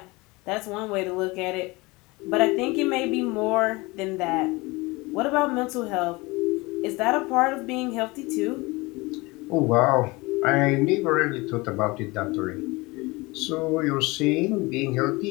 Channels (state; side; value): quieter; right; 23.6 dB